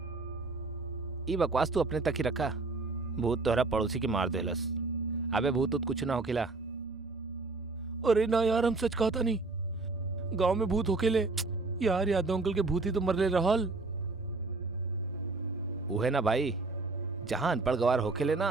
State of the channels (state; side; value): quieter; left; 3.6 dB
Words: ई बकवास तू अपने तक ही रखा। भूत तोहरा पड़ोसी के मार देलस। अबे भूत उत कुछ ना होकेला। अरे ना यार, हम सच कहता नहीं। गांव में भूत होकेले यार, यादव अंकल के भूत ही तो मरले रहल। उहे ना भाई, जहां अनपढ़ गवार होकेले